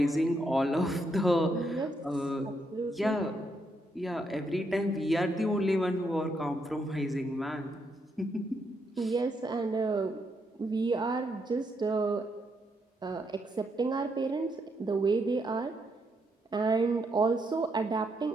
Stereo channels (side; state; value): both; normal; correlation 0.78